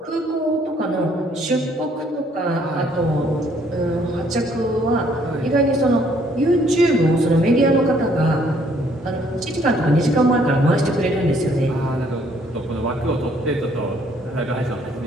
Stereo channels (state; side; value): normal; both; correlation 0.64